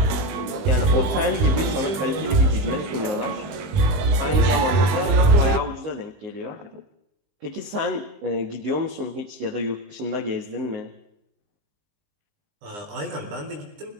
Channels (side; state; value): left; late; 20 ms